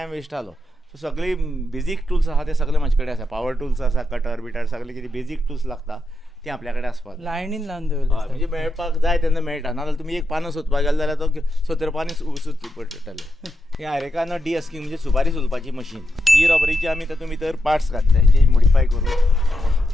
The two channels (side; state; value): both; normal; correlation 0.85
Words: वेस्ट जालो. सो सगळी बेजीक टूल्स आसा ते सगळे म्हाजे कडेन आसा. पावर टूल्स आसा कटर बिटर सगळे कितें बेजीक टूल्स लागता ती आपल्या कडेन आसपाक लायनीन लावन दवरले. म्हणजे मेळपाक जाय तेन्ना मेळटा. नाजाल्यार तुमी एक पानां सोदपाक गेले जाल्यार तो 70 पानी सुचची पडटले. हे आयरेकान डिअस्किंग म्हणजे सुपारी सुलपाची मशीन. ही रबरीची आमी तातूंत भितर पार्ट्स घातले जे मॉडिफाय करून